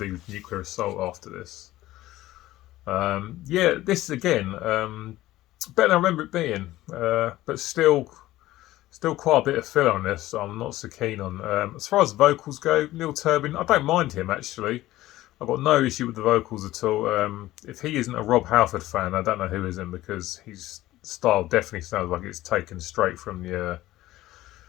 Nuclear Assault after this. Yeah, this again, better than I remember it being, but still quite a bit of filler on this. So I'm not so keen on. As far as vocals go, Neil Turbin, I don't mind him actually. I've got no issue with the vocals at all. If he isn't a Rob Halford fan, I don't know who isn't, because he's style definitely sounds like it's taken straight from the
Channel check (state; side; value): quieter; right; 16.1 dB